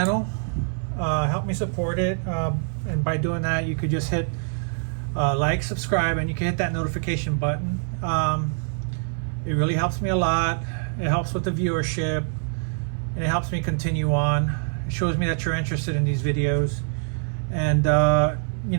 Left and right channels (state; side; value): silent; left; 59 dB below the other